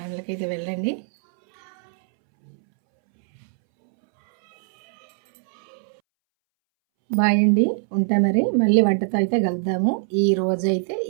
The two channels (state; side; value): silent; left; 64 dB below the other